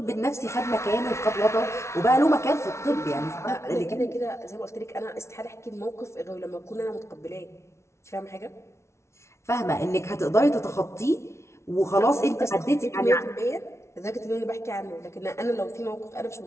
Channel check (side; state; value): right; late; 0.13 ms